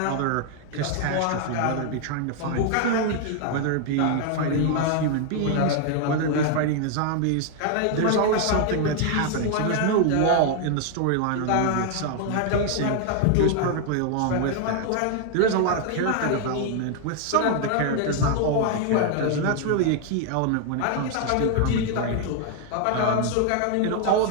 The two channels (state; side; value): different; both; correlation 0.00